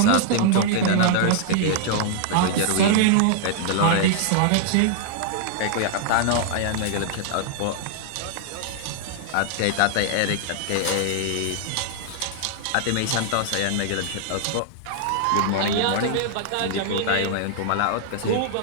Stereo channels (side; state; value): both; different; correlation -0.01